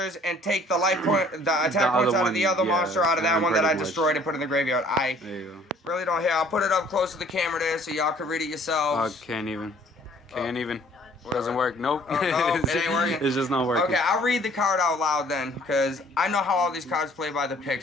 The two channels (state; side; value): normal; both; correlation 0.57